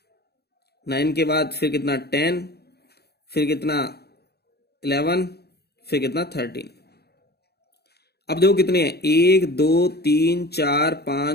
9 के बाद फिर कितना 10, फिर कितना 11, फिर कितना 13। अब देखो कितने हैं 1 2 3 4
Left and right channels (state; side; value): late; right; 0.47 ms